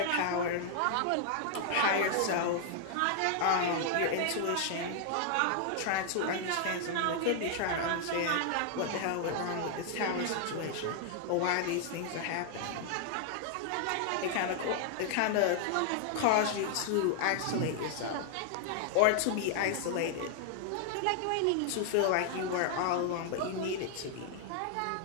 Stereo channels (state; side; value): different; both; correlation 0.00